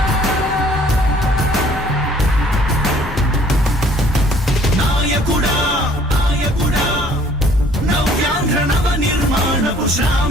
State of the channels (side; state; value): both; normal; correlation 0.57